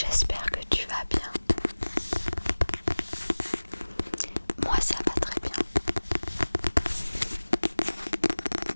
que tu vas bien. Moi ça va très bien.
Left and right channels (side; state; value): both; inverted; correlation -1.00